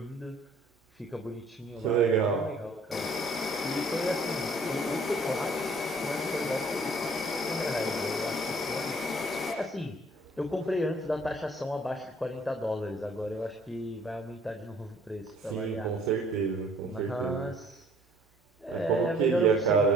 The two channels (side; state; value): both; normal; correlation 0.57